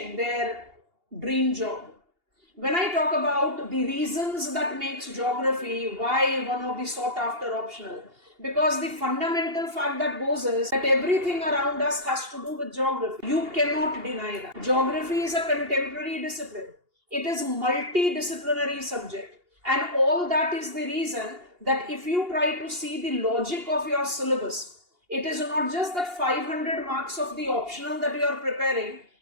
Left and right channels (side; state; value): left; late; 2.8 ms